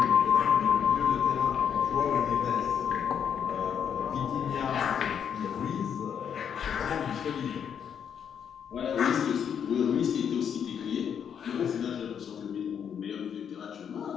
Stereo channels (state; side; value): quieter; right; 8.0 dB